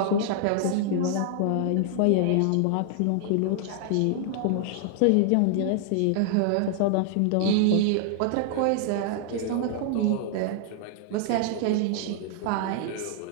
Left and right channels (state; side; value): different; both; correlation 0.00